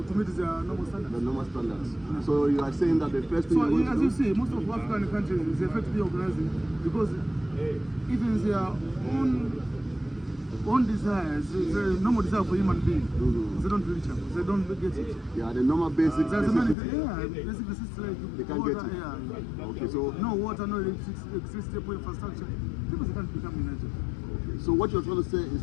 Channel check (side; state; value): right; drops out; at 16.8 s